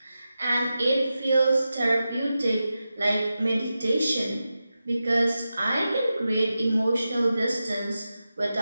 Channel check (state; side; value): inverted; both; correlation -0.92